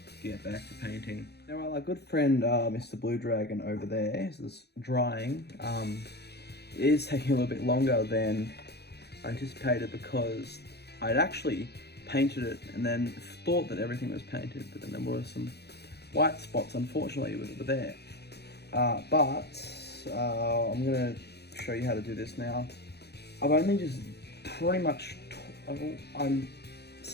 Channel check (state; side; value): late; right; 0.48 ms